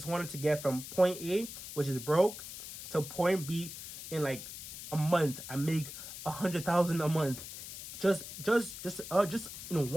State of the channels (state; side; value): noise; left; hiss, 10 dB below the sound